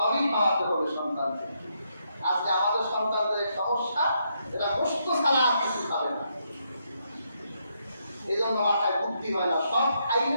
খাওয়াতে হবে সন্তানকে। আজকে আমাদের সন্তানদের সমস্যা, এরা গোশত ছাড়া কিছু খাবে না, এই জন্য মাথায় বুদ্ধি হয় না, সব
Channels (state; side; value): inverted; both; correlation -0.78